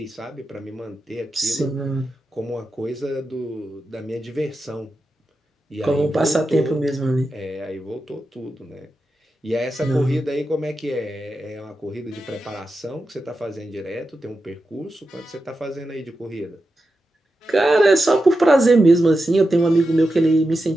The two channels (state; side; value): normal; both; correlation 0.90